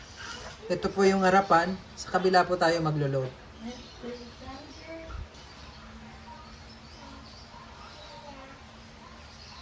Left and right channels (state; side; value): identical; both; correlation 1.00